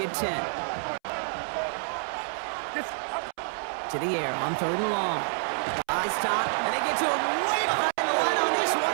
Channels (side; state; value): left; silent; 59 dB below the other